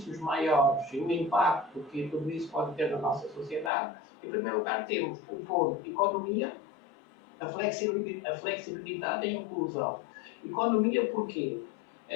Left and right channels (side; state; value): right; drops out; at 3.7 s